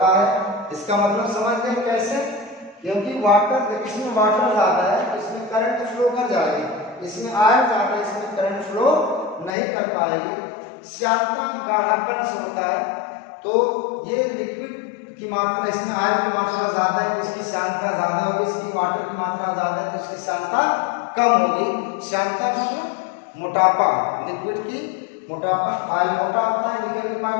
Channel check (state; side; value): drops out; right; at 9.5 s